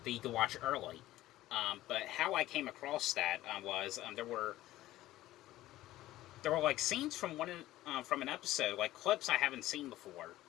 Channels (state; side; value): quieter; right; 15.5 dB